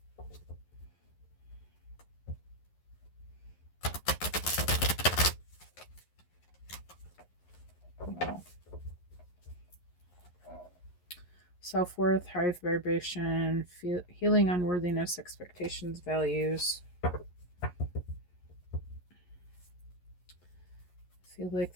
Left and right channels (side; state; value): right; late; 11 ms